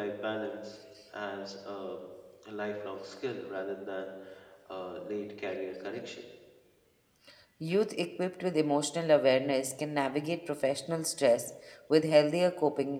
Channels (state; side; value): identical; both; correlation 1.00